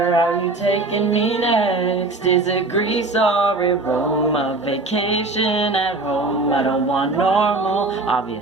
are you taking me next? Is it Greece or a Rome? A vacation at home? I don't want normal,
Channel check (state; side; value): quieter; left; 3.2 dB